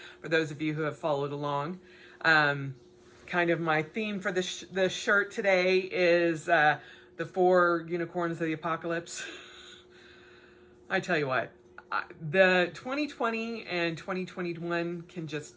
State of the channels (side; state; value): both; identical; correlation 1.00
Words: for those of you who have followed along. Kind of my theme for the shirt today is the 4 unicorns of the apocalypse. I tell you what, the 2020 and 2021 can just